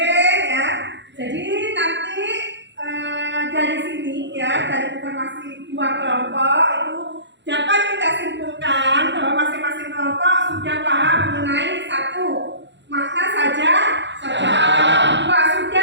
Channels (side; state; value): left; late; 0.52 ms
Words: ya. Jadi nanti dari sini ya, dari informasi dua kelompok itu dapat kita simpulkan bahwa masing-masing kelompok sudah paham mengenai 1. Makna saja, dua sudah